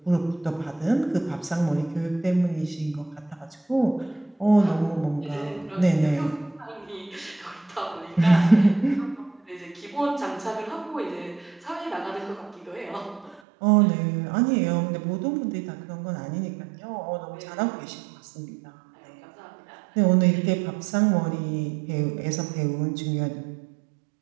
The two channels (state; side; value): drops out; left; at 13.4 s